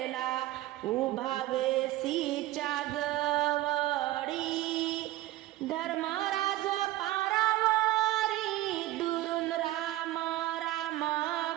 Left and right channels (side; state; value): left; quieter; 16.3 dB